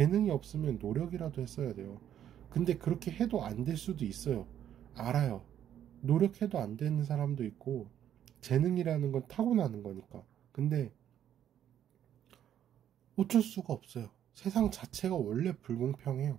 없으면 노력이라도 했어야 돼요. 근데 그렇게 해도 안 될 수도 있어요. 알아요. 노력해도 안 되는 사람도 있고 재능이라는 건 타고나는 거니까. 근데 어쩔 수가 없어요. 세상 자체가 원래 불공평해요.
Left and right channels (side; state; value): left; quieter; 10.3 dB